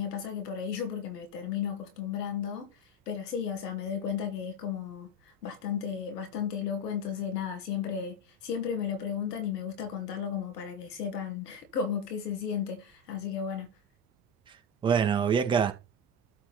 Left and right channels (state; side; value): normal; both; correlation 0.15